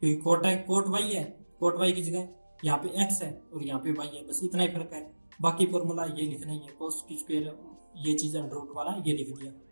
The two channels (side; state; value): both; inverted; correlation -1.00